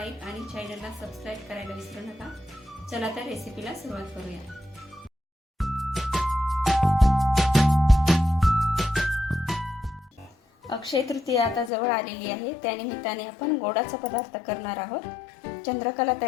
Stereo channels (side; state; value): right; drops out; at 11.7 s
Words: आणि चॅनलला सबस्क्राइब करायला विसरू नका। चला तर रेसिपीला सुरुवात करूया। अक्षय तृतीया आता जवळ आलेली आहे, त्यानिमित्ताने आपण गोडाचा पदार्थ करणार आहोत, चंद्रकला